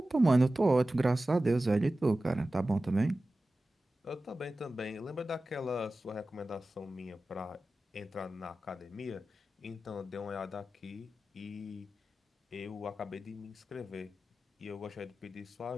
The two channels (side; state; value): both; normal; correlation 0.95